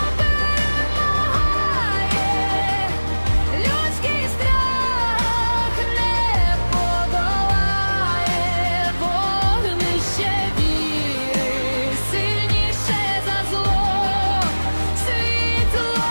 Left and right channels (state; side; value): inverted; both; correlation -1.00